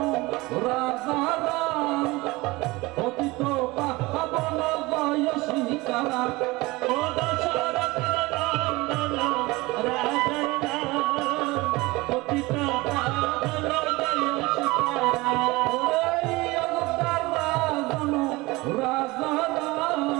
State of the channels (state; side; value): quieter; left; 22.0 dB